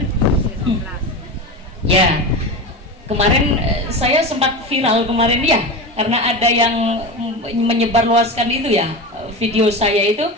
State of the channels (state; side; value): normal; both; correlation 0.24